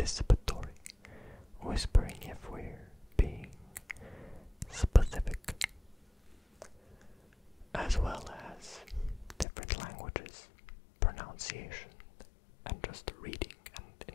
Whispering if we're being specific, as well as different languages, pronunciation, and just reading, and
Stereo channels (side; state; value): right; drops out; at 9.5 s